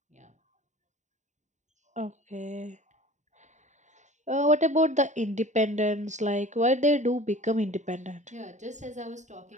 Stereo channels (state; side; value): late; left; 0.34 ms